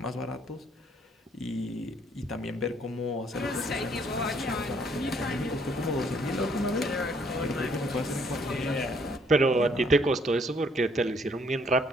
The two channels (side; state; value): both; normal; correlation 0.65